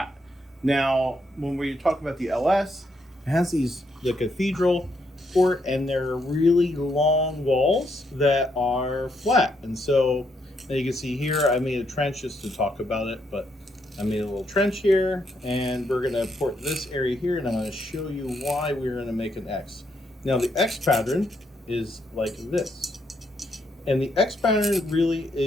Now, when we talk about the LS, it has the cathedral port, and they're really long walls that are flat. And so, as you can see here, I made a trench just to talk about it, but I made a little trench here, and we're gonna port this area here, and I'm gonna show you why we're gonna make an X. Now, the X pattern is like this. And the X pattern really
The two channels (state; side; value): normal; both; correlation 0.76